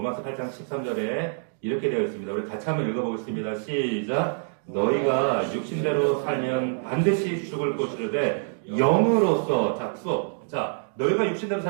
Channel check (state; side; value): silent; left; digital silence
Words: 8장 13절에 이렇게 되어 있습니다. 우리 같이 한번 읽어보겠습니다. 시작. 너희가 육신대로 살면 반드시 죽을 것이로되 영으로서 자 수업. 자 너희가 육신대로